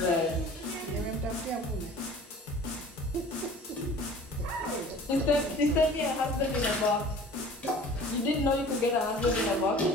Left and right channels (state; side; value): normal; both; correlation 0.45